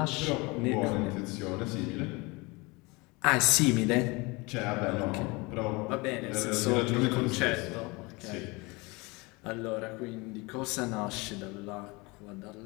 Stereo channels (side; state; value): right; quieter; 25.6 dB